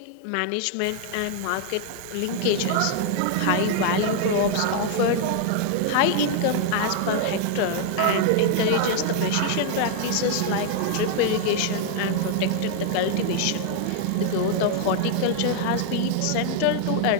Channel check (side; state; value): both; different; correlation 0.00